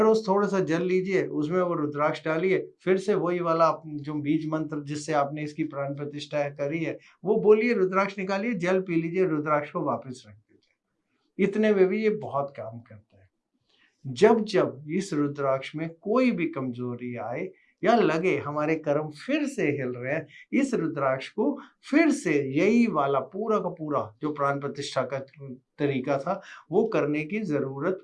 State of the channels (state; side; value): identical; both; correlation 1.00